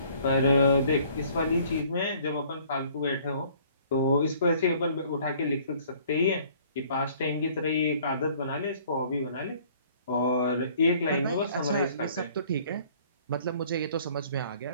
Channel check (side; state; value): both; inverted; correlation -0.56